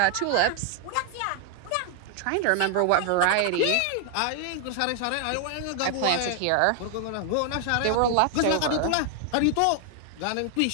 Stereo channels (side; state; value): both; different; correlation 0.01